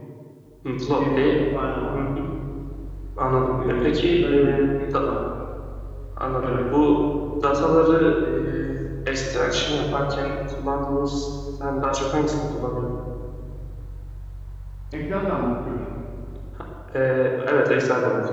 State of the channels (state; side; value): identical; both; correlation 1.00